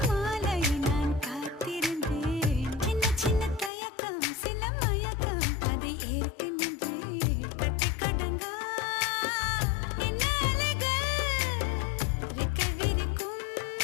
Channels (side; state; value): right; drops out; at 3.7 s